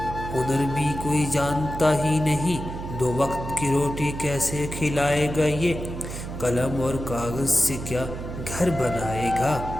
ہنر بھی کوئی جانتا ہی نہیں، 2 وقت کی روٹی کیسے کھلائے گا یہ؟ قلم اور کاغذ سے کیا گھر بنائے گا،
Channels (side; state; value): right; noise; hum, 8 dB below the sound